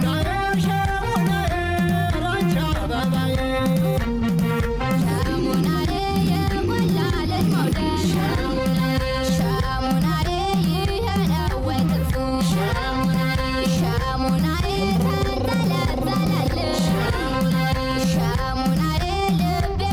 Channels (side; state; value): both; identical; correlation 1.00